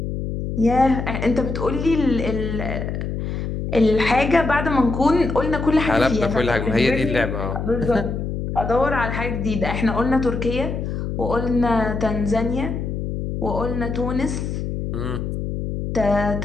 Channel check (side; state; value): left; noise; hum, 4 dB below the sound